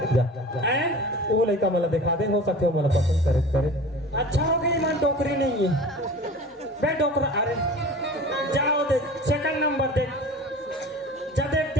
जा हैं वो लड़का मला दिखा दे हो सकते हो मला पसंद करे अच्छा हो गई मन डोकरी नहीं है बे डोकरा अरे जाओ दे सेकंड नंबर दे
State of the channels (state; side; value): normal; both; correlation 0.39